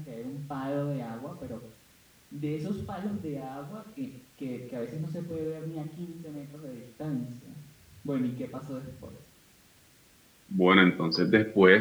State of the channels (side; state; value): both; identical; correlation 1.00